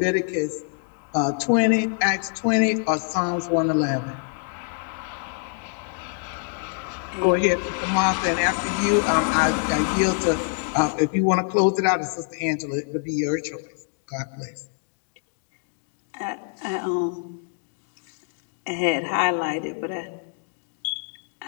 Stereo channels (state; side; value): silent; right; 57 dB below the other